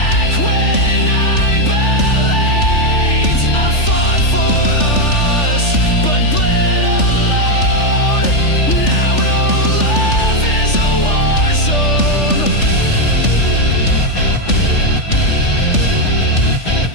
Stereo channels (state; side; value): late; right; 3.4 ms